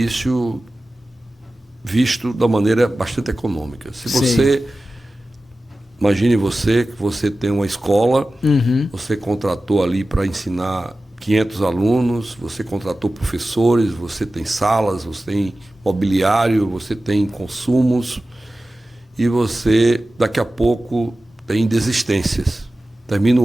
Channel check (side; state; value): both; normal; correlation 0.95